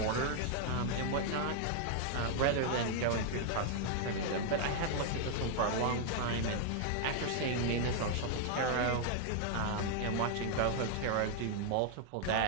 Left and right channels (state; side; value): different; both; correlation 0.00